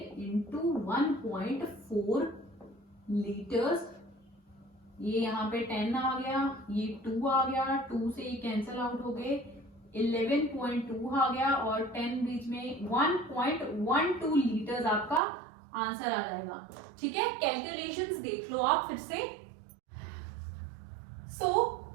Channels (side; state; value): left; drops out; at 15.2 s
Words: इंटू 1.4 लीटर्स, ये यहाँ पे 10 आ गया, ये 2 आ गया, 2 से ये कैंसिल आउट हो गए, 11.2 आ गया और 10 बीच में 1.12 लीटर्स आपका आंसर आ जाएगा, ठीक है। कैलकुलेशंस देख लो आप फिर से।